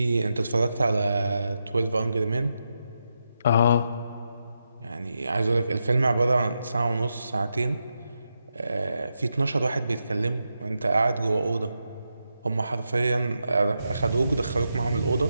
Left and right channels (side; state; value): both; inverted; correlation -0.86